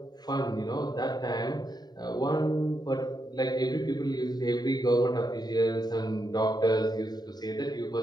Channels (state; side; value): late; right; 0.20 ms